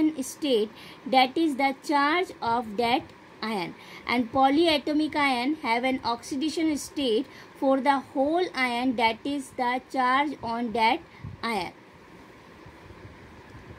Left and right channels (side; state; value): both; identical; correlation 1.00